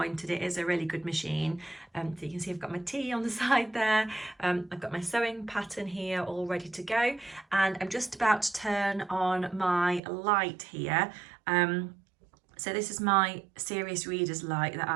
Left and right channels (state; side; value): drops out; left; at 10.0 s